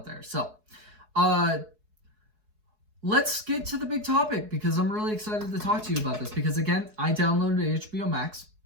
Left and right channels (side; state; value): left; late; 4.7 ms